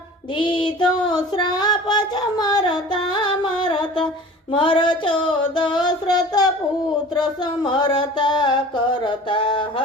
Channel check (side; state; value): both; normal; correlation 0.42